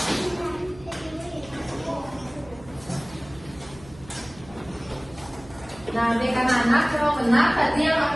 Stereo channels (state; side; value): noise; right; hum, 20 dB below the sound